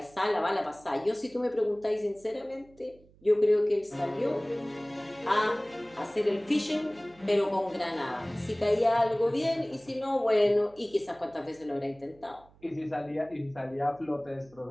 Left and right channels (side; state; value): right; noise; hum, 27 dB below the sound